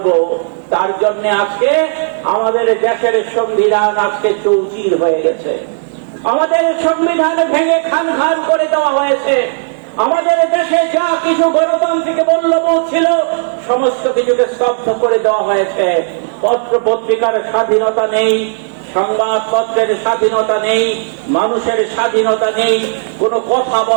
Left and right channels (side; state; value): left; silent; digital silence